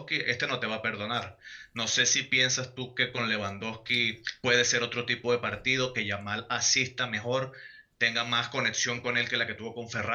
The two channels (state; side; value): identical; both; correlation 1.00